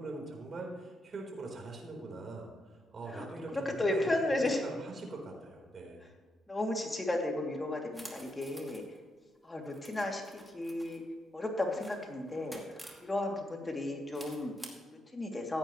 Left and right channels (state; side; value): normal; both; correlation 0.81